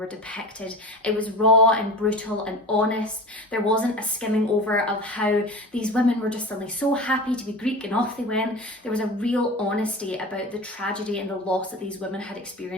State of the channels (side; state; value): both; normal; correlation 0.33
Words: depicted. It was raw and brutal and honest. There wasn't a skimming over of how these women were just suddenly so happy to be Greek and off they went. There was a real honesty about the tragedy and the loss that these women had